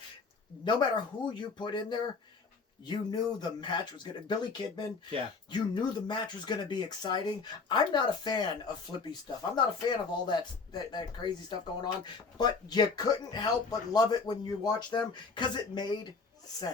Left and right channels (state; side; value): quieter; right; 4.6 dB